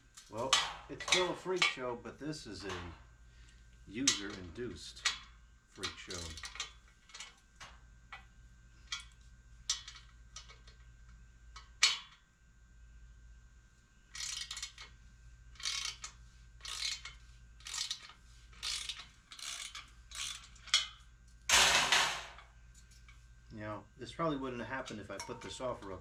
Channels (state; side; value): identical; both; correlation 1.00